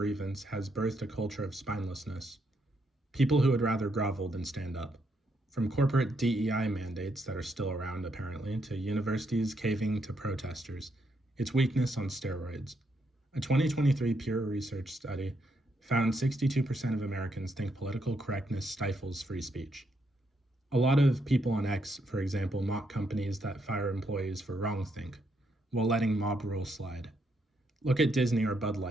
has birthed a culture of spinelessness. People who would rather grovel than stand up. From corporate DEI mandates that are still around apparently, to universities caving to protesters. It's weakness on steroids. A 2023 Pew Research study found 62% of Americans think political correctness stifles free speech. A lot of people on X, for example, mock companies that fire employees for wrongthink, while letting mob rules slide. Look at Disney or Bud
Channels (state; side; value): normal; both; correlation 0.77